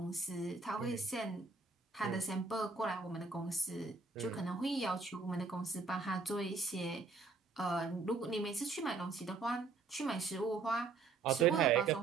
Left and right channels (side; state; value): left; quieter; 4.2 dB